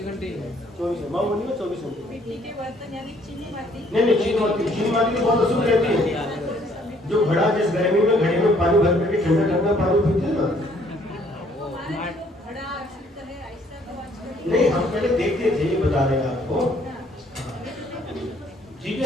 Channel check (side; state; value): both; normal; correlation 0.63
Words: 24 माँ बोलिए 24 घंटे मिट्टी के बर्तन यानी चीनी माटी। नहीं चीनी माटी तो बहुत अशुभ रहती है। जो घड़ा जिस गर्मी में घड़े में पानी भर करके ठंडा ठंडा पानी पीते हैं ना, हमारे जो घड़ा शुद्ध है ऐसा तो आजकल नहीं हम पहले देखते थे, ये बता रहे हैं आपको। ठीक